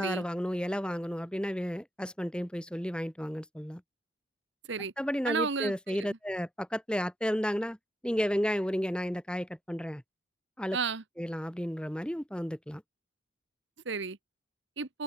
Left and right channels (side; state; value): both; normal; correlation 0.79